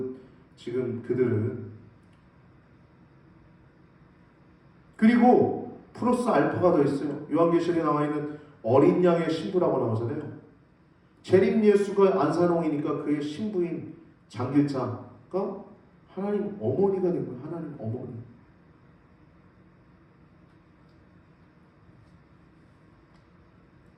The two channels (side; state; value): both; identical; correlation 1.00